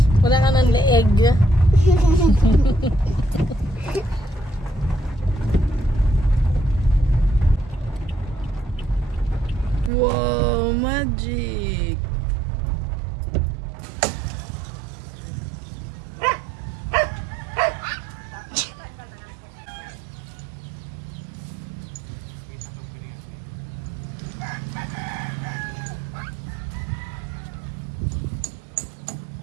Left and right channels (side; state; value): left; drops out; at 9.9 s